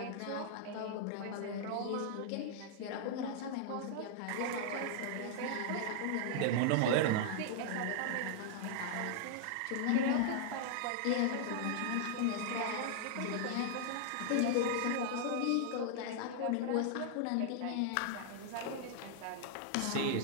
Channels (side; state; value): both; different; correlation -0.01